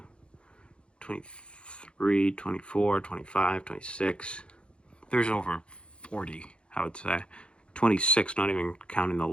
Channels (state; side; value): late; right; 0.057 ms